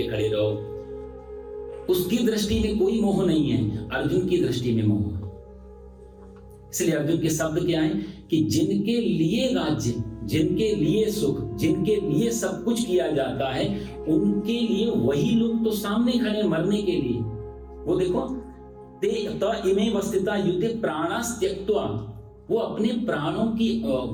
खड़े रहो। उसकी दृष्टि में कोई मोह नहीं है, अर्जुन की दृष्टि में मोह है। इसलिए अर्जुन के शब्द क्या है कि जिनके लिए राज्य, जिनके लिए सुख, जिनके लिए सब कुछ किया जाता है, उनके लिए वही लोग तो सामने खड़े मरने के लिए। वो देखो, ते त इमे वस्थिता युते प्राणास त्यक्त्वा, वो अपने प्राणों की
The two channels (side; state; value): both; identical; correlation 1.00